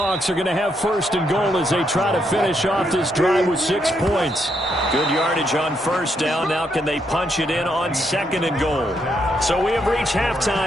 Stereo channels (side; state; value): both; normal; correlation 0.77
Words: are going to have first and goal as they try to finish off this drive with 6 points. Good yardage on first down. Now can they punch it in on second and goal? So we have reached